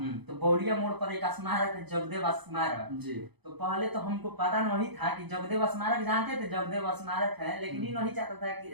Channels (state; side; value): late; left; 0.99 ms